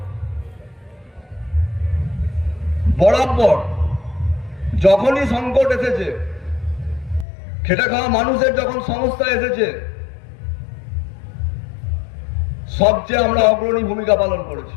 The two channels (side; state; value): right; drops out; at 7.2 s